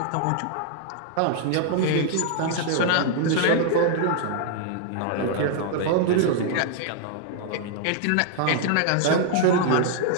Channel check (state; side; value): different; both; correlation 0.00